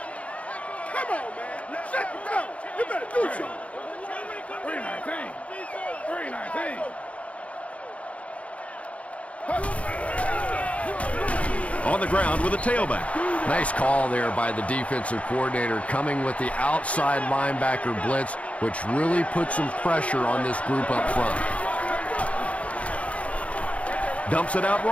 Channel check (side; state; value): right; late; 0.064 ms